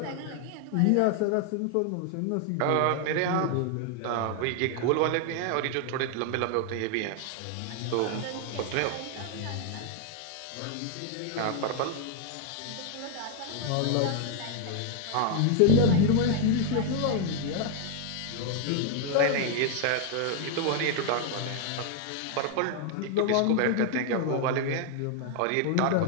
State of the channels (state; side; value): different; both; correlation 0.00